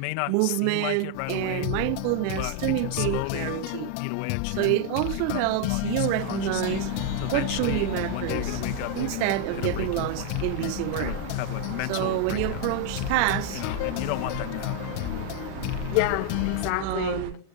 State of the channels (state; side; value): different; both; correlation 0.01